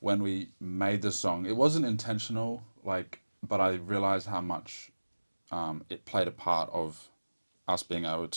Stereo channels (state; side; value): inverted; both; correlation -1.00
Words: we made the song, it wasn't intentional, like, but I realized how much it played a part of us being able